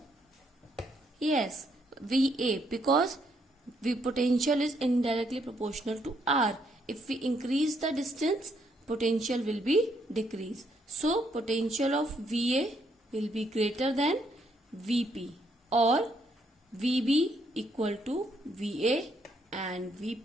Yes, VA, because the potential is indirectly proportional to R. If we increase the distance, potential will be decreased. So potential of VA will be greater than VP, or VB equal to VA and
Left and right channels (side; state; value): both; normal; correlation 0.73